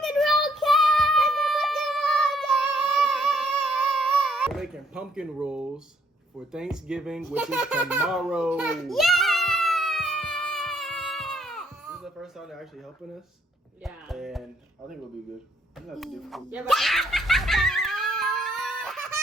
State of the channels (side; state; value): both; normal; correlation 0.69